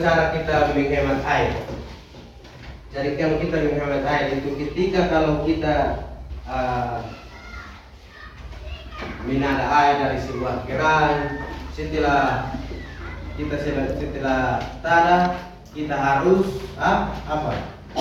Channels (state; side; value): identical; both; correlation 1.00